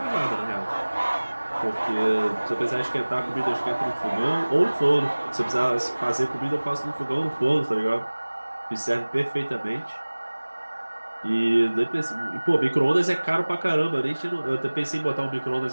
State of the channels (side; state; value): both; inverted; correlation -1.00